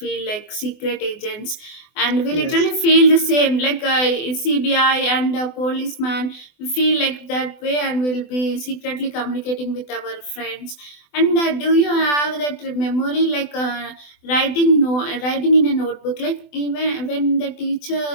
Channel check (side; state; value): right; late; 24 ms